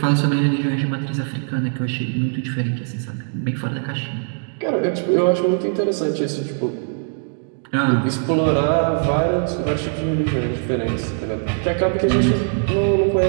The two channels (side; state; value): left; silent; 62 dB below the other